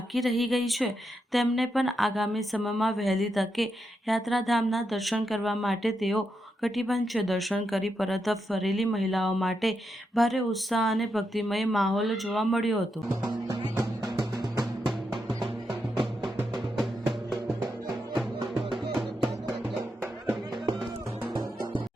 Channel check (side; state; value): both; normal; correlation 0.84